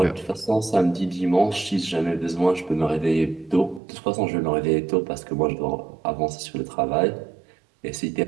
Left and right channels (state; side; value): drops out; left; at 3.8 s